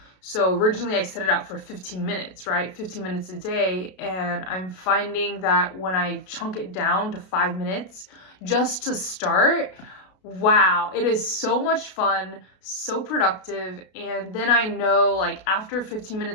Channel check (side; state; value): right; late; 33 ms